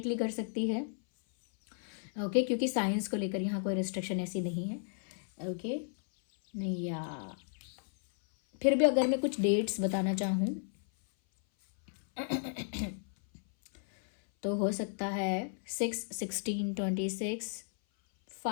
कर सकती है। ओके, क्योंकि साइंस को लेकर यहाँ कोई रिस्ट्रिक्शन ऐसी नहीं है। ओके, नहीं, या फिर भी अगर मैं कुछ डेट्स बताना चाहूँ तो हो सकता है 6/16/26,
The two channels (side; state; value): right; silent; 55 dB below the other